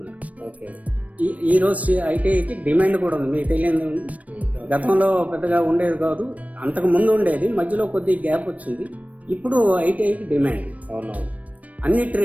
ఓకే. ఈ రోజు ఐటీఐకి డిమాండ్ కూడా ఉంది, మీకు తెలియదు. గతంలో పెద్దగా ఉండేది కాదు, అంతకు ముందు ఉండేది, మధ్యలో కొద్ది గ్యాప్ వచ్చింది. ఇప్పుడు ఐటీఐకి డిమాండ్ అవునవును. అన్ని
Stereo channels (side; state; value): left; late; 0.069 ms